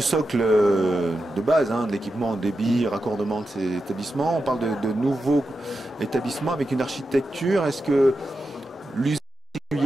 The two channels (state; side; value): normal; both; correlation 0.89